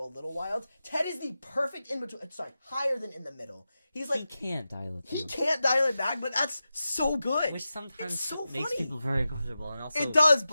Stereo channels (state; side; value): inverted; both; correlation -0.93